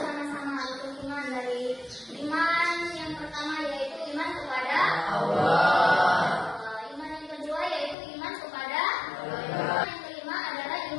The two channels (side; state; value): right; drops out; at 8.0 s